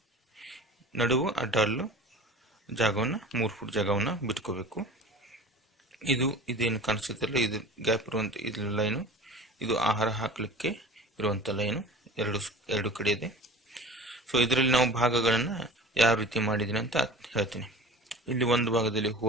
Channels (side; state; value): both; normal; correlation 0.39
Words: ನಡುವು ಅಡ್ಡಲ್ಲು ಜಾಗವನ್ನು 3 ಫೂಟ್ ಜಾಗವನ್ನು ಬಿಟ್ಕೋಬೇಕು. ಇದೇನು ಕಾಣಿಸುತ್ತಲ್ಲ, ಇದು ಗ್ಯಾಪ್ ಇರುವಂಥ ಇದು ಲೈನು, ಇದು ಆಹಾರ ಹಾಕಲಿಕ್ಕೆ ಇರುವಂಥ ಲೈನು ಎರಡು ಕಡೆ ಇದೆ. ಸೊ ಇದರಲ್ಲಿ ನಾವು ಭಾಗಗಳನ್ನು ಯಾವ ರೀತಿ ಮಾಡಿದ್ದೀನಿ ಅಂತ ಹೇಳ್ತೀನಿ. ಇಲ್ಲಿ ಒಂದು ಭಾಗದಲ್ಲಿ